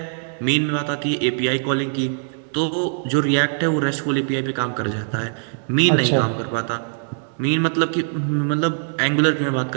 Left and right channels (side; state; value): left; silent; 64 dB below the other